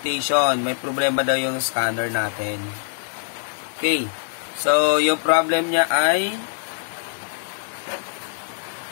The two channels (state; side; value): silent; right; 63 dB below the other